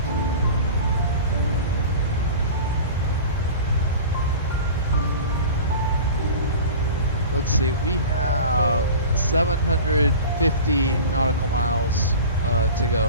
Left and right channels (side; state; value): both; inverted; correlation -0.36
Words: Let's see, we have 750 nautical miles to